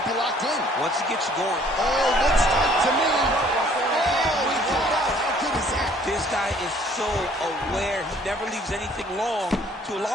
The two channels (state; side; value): normal; both; correlation 0.58